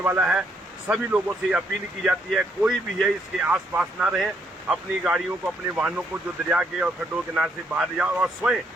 है। सभी लोगों से अपील की जाती है कोई भी है इसके आसपास ना रहे, अपनी गाड़ियों को, अपने वाहनों को जो दरिया के और खड्डों के किनारे से बाहर ले जाओ और स्वयं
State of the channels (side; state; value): both; normal; correlation 0.72